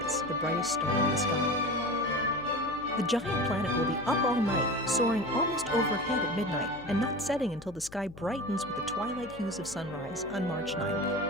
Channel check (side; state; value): left; noise; hum, 19 dB below the sound